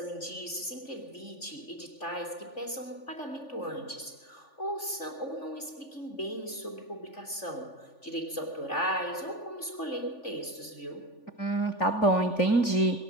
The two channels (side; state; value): right; late; 3.4 ms